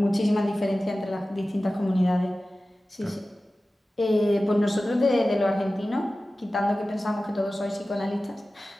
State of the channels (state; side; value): normal; both; correlation 0.96